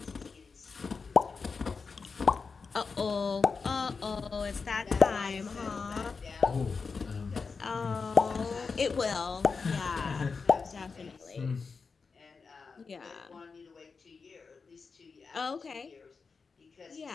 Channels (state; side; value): quieter; right; 4.9 dB